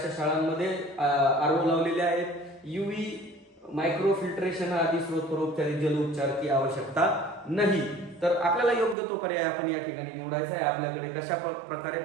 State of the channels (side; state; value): left; drops out; at 9.0 s